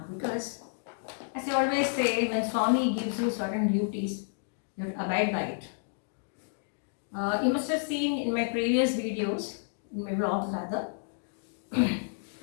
because as I always say, when Swami gives you certain duties, you have to abide by it. You must have seen in my previous videos, in my vlogs rather,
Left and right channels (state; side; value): silent; right; digital silence